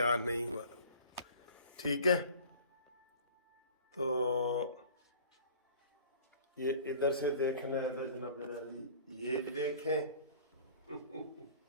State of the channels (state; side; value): inverted; both; correlation -0.47